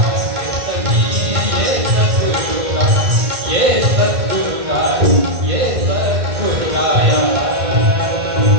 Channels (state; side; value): late; left; 2.1 ms